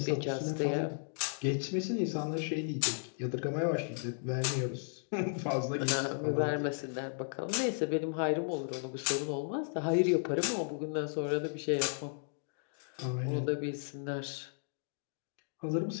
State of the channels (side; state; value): right; silent; digital silence